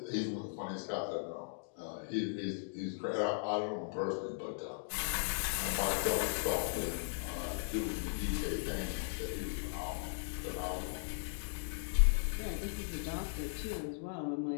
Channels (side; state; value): right; silent; digital silence